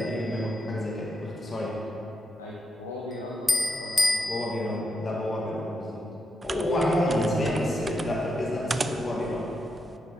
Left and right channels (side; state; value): both; normal; correlation 0.83